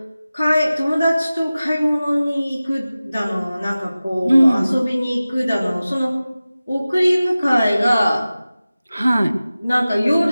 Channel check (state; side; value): inverted; both; correlation -0.96